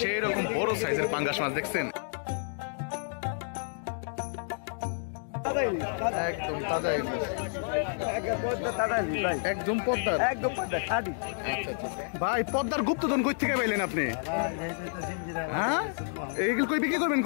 সেই রকম বড় সাইজের পাঙ্গাস মাছ দেখছেন, একদম তাজা ইলিশ, একদম পদ্মার, একদম পদ্মা খাদি। ভাই পদ্মার গুপ্তধন কই থেকে পাইলেন আপনি? হ্যাঁ এইগুলো কই বিক্রি করবেন?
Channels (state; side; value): silent; right; digital silence